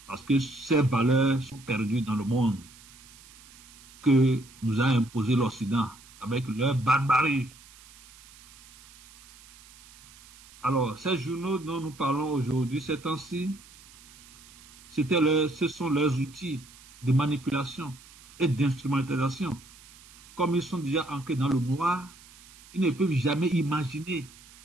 Parce que ces valeurs sont perdues dans le monde que nous a imposé l'Occident avec leur barbarie. Alors, ces journaux dont nous parlons aujourd'hui, ces temps-ci, ce sont leurs outils de manipulation et d'instrumentalisation. Comme ils sont déjà ancrés dans le noir, ils ne peuvent jamais imaginer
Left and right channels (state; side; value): noise; right; hiss, 23 dB below the sound